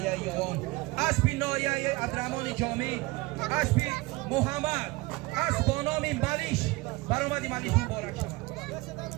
یوان اسبی نایه عبدالرحمن جامی اسبی محمد اسب با نام ملیش برآمدی ملیش مبارک شود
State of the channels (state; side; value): quieter; left; 22.5 dB